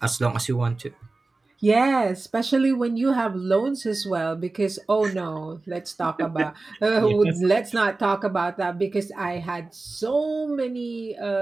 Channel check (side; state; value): left; quieter; 3.4 dB